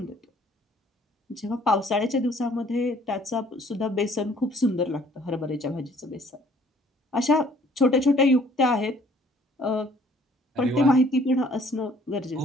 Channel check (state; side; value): normal; both; correlation 0.58